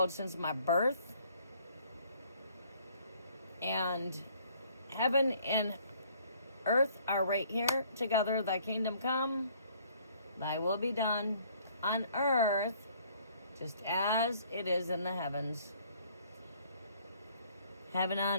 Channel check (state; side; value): inverted; both; correlation -0.60